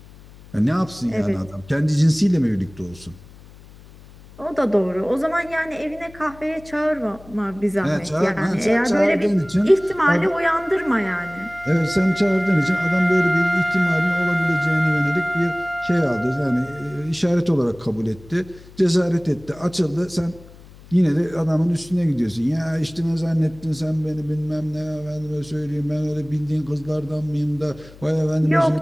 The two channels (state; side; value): noise; left; hum, 21 dB below the sound